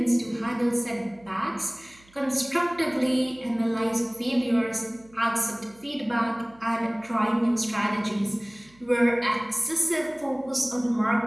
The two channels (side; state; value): right; noise; hum, 28 dB below the sound